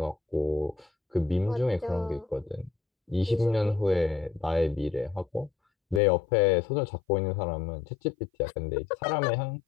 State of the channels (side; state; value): right; drops out; at 6.0 s